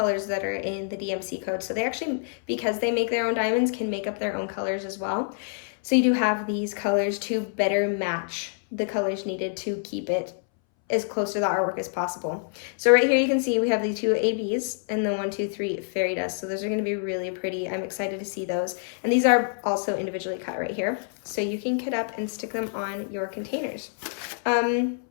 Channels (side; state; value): right; silent; 61 dB below the other